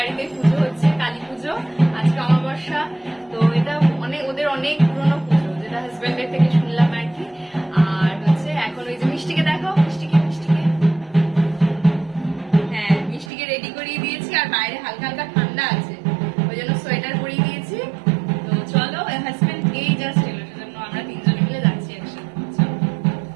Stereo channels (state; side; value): drops out; left; at 13.3 s